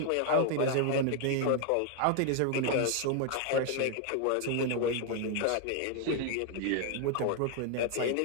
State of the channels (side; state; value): both; different; correlation 0.00